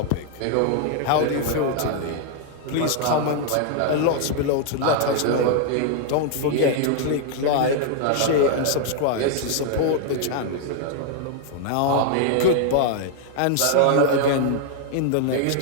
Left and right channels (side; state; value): both; different; correlation 0.00